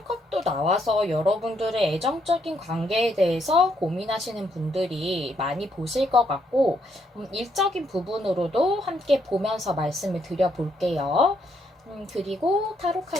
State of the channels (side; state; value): both; normal; correlation 0.74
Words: 나와서 여러분들의 애정적인 관계에 대해서 고민하시는 분들이 많이 보실 것 같고 일적인 부분으로도 함께 보면서 말씀을 드려볼게요. 그리고 타로